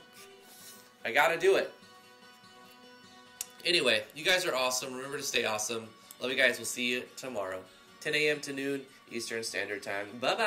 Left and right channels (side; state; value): both; identical; correlation 1.00